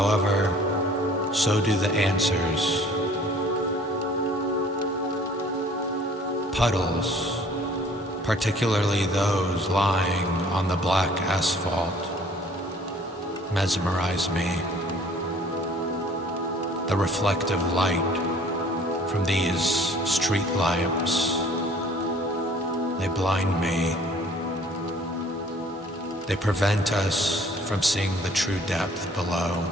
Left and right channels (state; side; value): normal; both; correlation 0.54